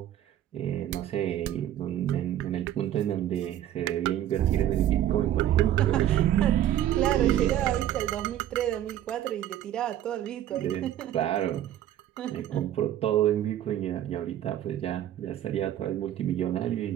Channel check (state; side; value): quieter; left; 11.8 dB